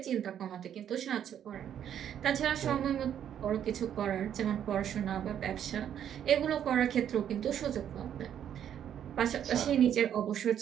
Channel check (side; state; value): left; quieter; 9.6 dB